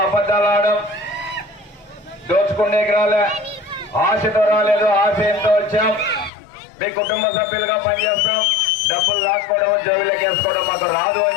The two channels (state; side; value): drops out; right; at 6.3 s